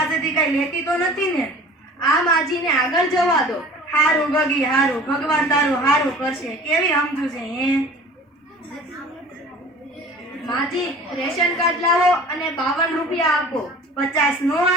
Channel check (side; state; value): both; normal; correlation 0.44